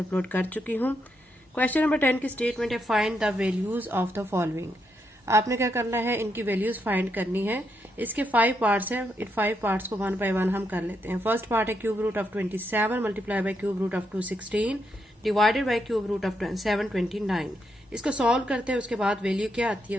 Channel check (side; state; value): both; normal; correlation 0.80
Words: कर चुकी हूँ। क्वेश्चन नंबर 10 की स्टेटमेंट है find the values of the following. आपने क्या करना है, इनकी वैल्यूज फाइंड करनी है। इसके 5 पार्ट्स हैं, इन 5 पार्ट्स को 1 बाय 1 हम कर लेते हैं। फर्स्ट पार्ट है cube root of 27 multiply by cube root of 216 divided by cube root of 729। इसको सॉल्व करते हैं, उसके बाद वैल्यू क्या आती